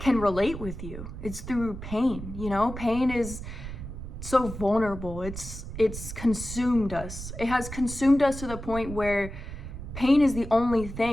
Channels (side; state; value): right; noise; rumble, 9 dB below the sound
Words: relate with you. It's through pain, you know? Pain is so vulnerable. It's consumed us. It has consumed us to the point where pain is the only